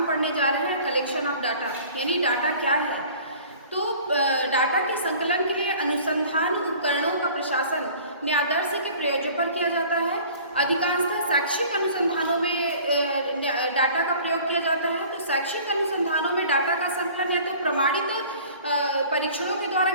पढ़ने जा रहे हैं कलेक्शन ऑफ डाटा, यानी डाटा क्या है। तो डाटा के संकलन के लिए अनुसंधान उपकरणों का प्रशासन न्यायादर्श के प्रयोजन पर किया जाता है। अधिकांशतः शैक्षिक अनुसंधानों में डाटा का प्रयोग किया जाता है। तो शैक्षिक अनुसंधानों में डाटा का संकलन या तो प्रमाणित परीक्षणों के द्वारा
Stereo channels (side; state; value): both; inverted; correlation -0.47